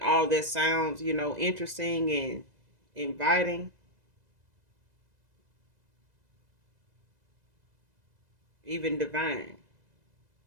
all that sounds, interesting and inviting, even divine.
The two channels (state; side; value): late; left; 2.0 ms